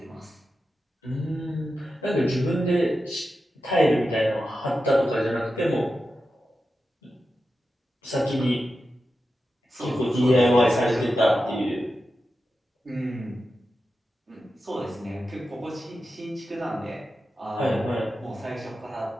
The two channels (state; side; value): normal; both; correlation 0.91